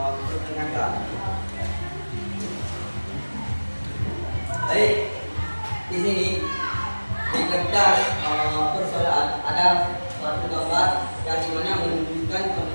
Baik, di sini di kertas persoalan ada suatu gambar yang dimana menunjukkan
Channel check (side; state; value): both; inverted; correlation -1.00